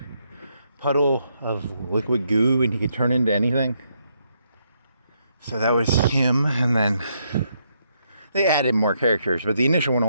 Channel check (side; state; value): both; inverted; correlation -0.76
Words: puddle of liquid goo and he could turn into anything. So that was him, and then they added more characters, but the initial one